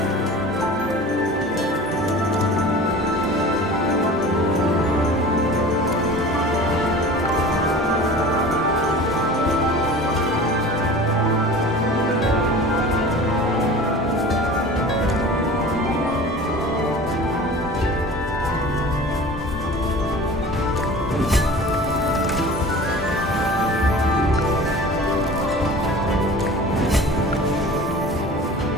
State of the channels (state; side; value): normal; both; correlation 0.39